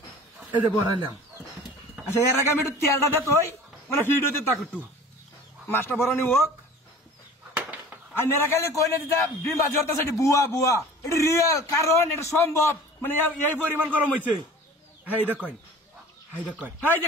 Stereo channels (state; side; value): normal; both; correlation 0.43